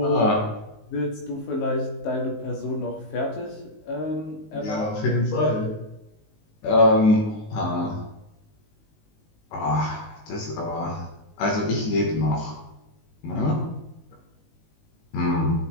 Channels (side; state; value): right; late; 19 ms